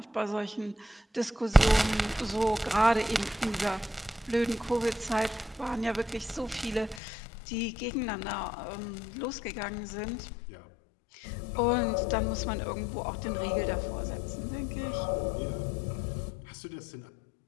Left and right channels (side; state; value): right; drops out; at 7.0 s